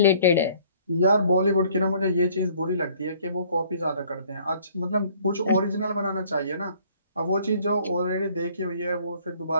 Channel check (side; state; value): both; inverted; correlation -0.58